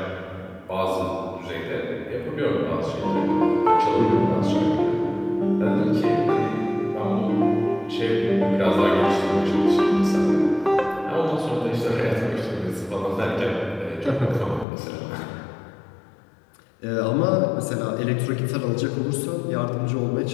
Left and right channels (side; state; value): right; drops out; at 14.7 s